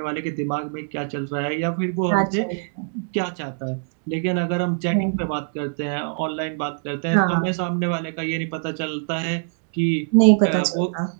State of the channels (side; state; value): left; silent; digital silence